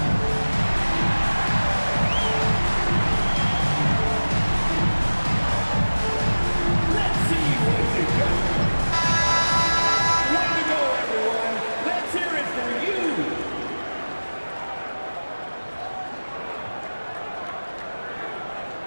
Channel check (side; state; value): both; inverted; correlation -1.00